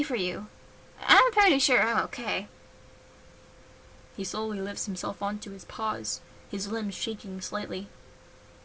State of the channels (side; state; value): both; identical; correlation 1.00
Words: for you. I'm pretty sure I'm okay. He slowly lifts himself onto his paws, his limbs shaking slightly.